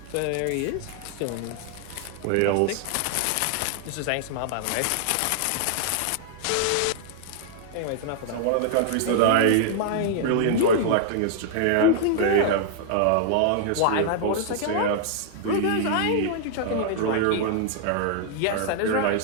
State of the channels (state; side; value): different; both; correlation -0.01